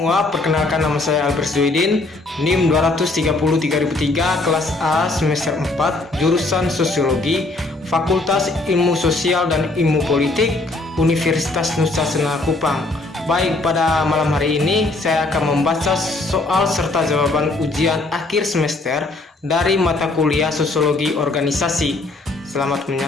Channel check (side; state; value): right; quieter; 3.0 dB